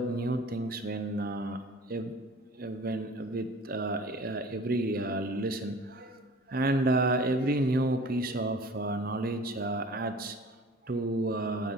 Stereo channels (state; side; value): normal; both; correlation 0.44